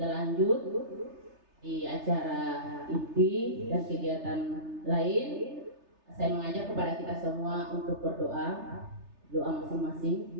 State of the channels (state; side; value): late; left; 3.3 ms